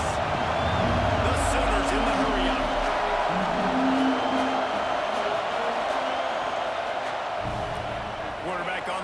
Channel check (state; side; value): identical; both; correlation 1.00